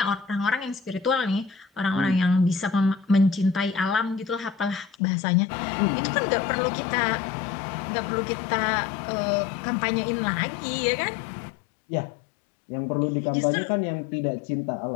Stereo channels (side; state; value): right; drops out; at 5.0 s